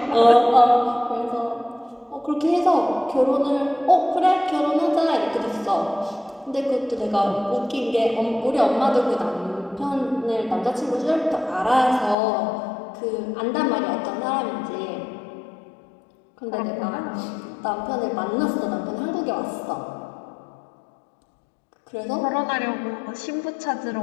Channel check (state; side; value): drops out; right; at 12.2 s